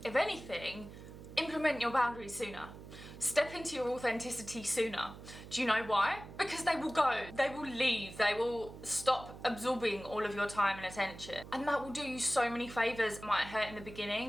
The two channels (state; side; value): noise; right; hum, 14 dB below the sound